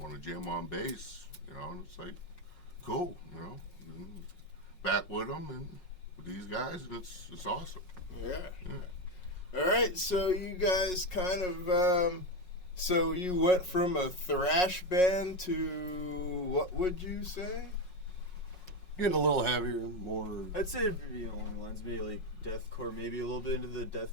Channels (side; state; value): right; late; 5.5 ms